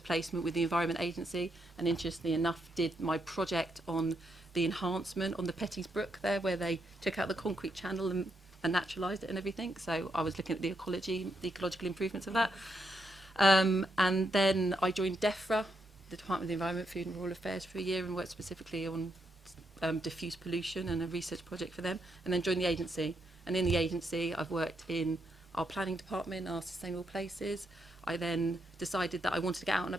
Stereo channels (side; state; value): both; normal; correlation 0.80